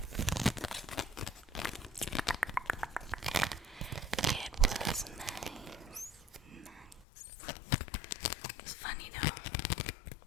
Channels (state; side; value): drops out; right; at 7.1 s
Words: It was nice. It's funny though.